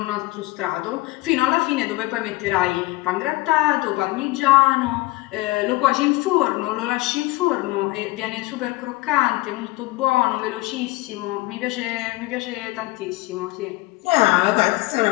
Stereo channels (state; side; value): quieter; right; 20.5 dB